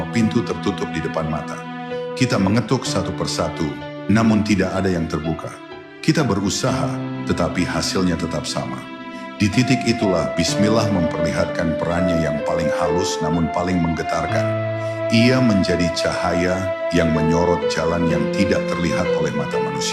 pintu tertutup di depan mata. Kita mengetuk satu persatu, namun tidak ada yang terbuka. Kita berusaha, tetapi hasilnya tetap sama. Di titik itulah Bismillah memperlihatkan perannya yang paling halus namun paling menggetarkan. Ia menjadi cahaya yang menyorot jalan yang tidak terlihat oleh mata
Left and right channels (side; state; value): both; identical; correlation 1.00